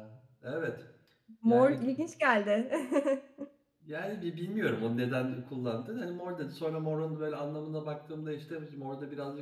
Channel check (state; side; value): identical; both; correlation 1.00